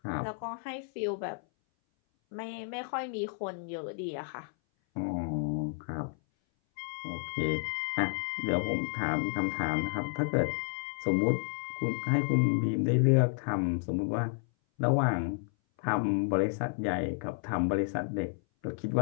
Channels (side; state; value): right; silent; 57 dB below the other